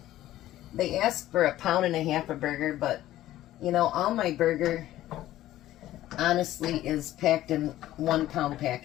they asked for 1.5 pounds of burger, but you know, all my burger honestly is packed in 1 pound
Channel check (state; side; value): quieter; right; 14.3 dB